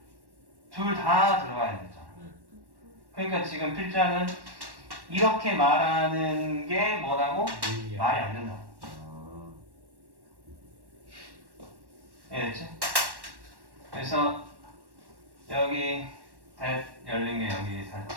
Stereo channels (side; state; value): left; late; 1.1 ms